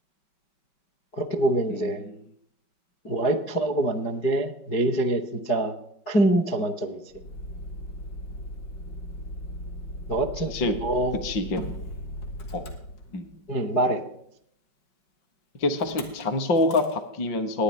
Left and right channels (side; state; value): right; late; 5.2 ms